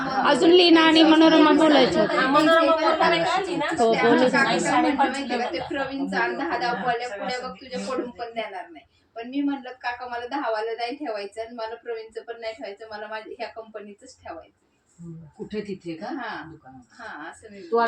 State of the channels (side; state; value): both; identical; correlation 1.00